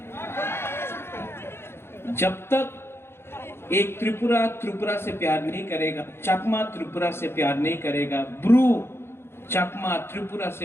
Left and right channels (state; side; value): late; right; 0.12 ms